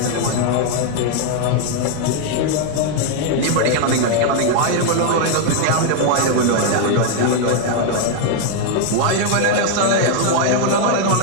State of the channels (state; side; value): different; both; correlation 0.00